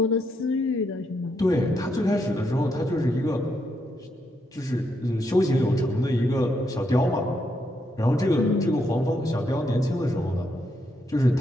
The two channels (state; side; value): normal; both; correlation 0.79